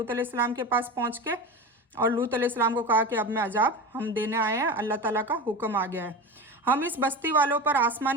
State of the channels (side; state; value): both; normal; correlation 0.26